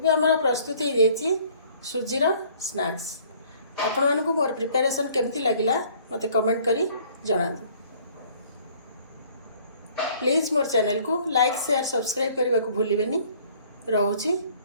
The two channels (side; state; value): both; inverted; correlation -0.56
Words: हमर प्रस्तुत हो जाइए सुजीर स्नैक्स। आपण मानकु मोर प्रिपरेशन केमती लागिला मते कमेंट करी जणातु। प्लीज मोर चैनल को लाइक शेयर सब्सक्राइब करने को भूलिबेनी। रहुची